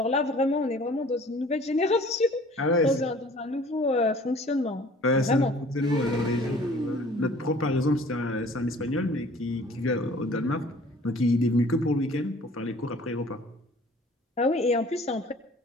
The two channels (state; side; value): normal; both; correlation 0.50